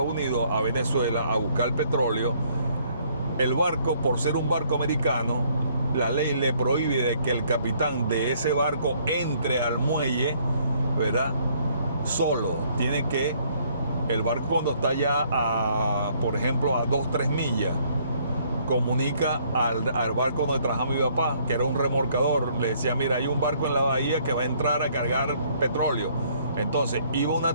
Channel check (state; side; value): inverted; both; correlation -0.64